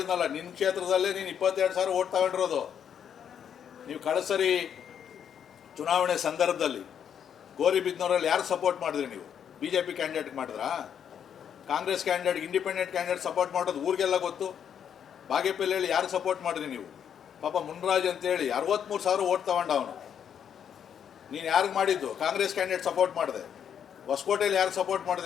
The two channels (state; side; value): quieter; right; 8.4 dB